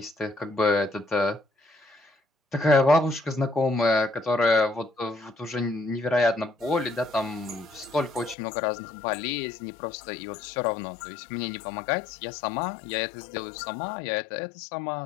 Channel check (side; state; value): right; drops out; at 8.3 s